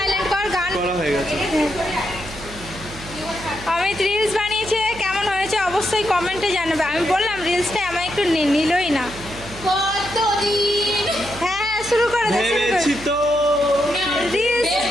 কর, গান করা হয়ে গেছে। অমিত রিলস বানিয়েছে, কেমন হয়েছে অবশ্যই কমেন্টে জানাবে। আমি বললাম রিলসটা আমার একটু নিলই না। কতদিন হ্যাঁ শুরু করে দে, শুরু ভেবেছি করে। তো রিলস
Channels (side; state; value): right; noise; hum, 15 dB below the sound